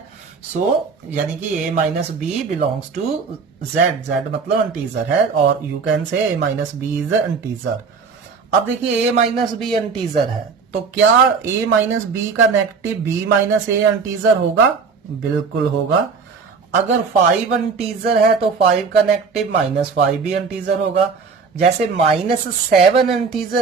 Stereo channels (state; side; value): quieter; left; 5.2 dB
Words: सो यानी कि a minus B belongs to z, z मतलब इंटीजर है, और you can say a minus B is integer. अब देखिए a माइनस बी इंटीजर है, तो क्या a माइनस बी का negative b minus a integer होगा? बिल्कुल होगा। अगर 5 इंटीजर है तो 5 का नेगेटिव -5 भी इंटीजर होगा। जैसे -7